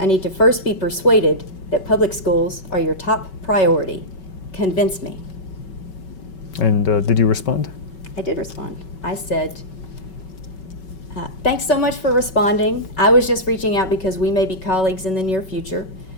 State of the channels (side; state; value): right; late; 5.3 ms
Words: need to first be persuaded that public schools are your top priority. Convince me. And did you respond? I did respond. I said, thanks so much for responding. I was just reaching out because we may be colleagues in the near future.